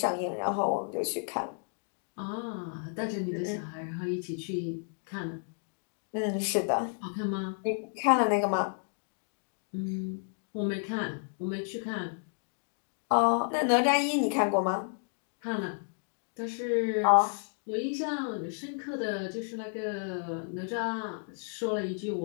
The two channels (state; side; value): silent; right; 57 dB below the other